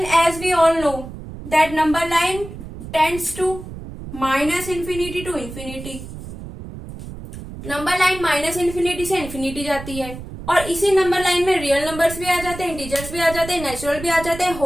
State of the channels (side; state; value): right; noise; rumble, 12 dB below the sound